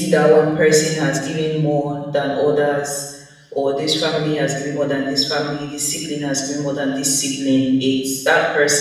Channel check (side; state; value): both; identical; correlation 1.00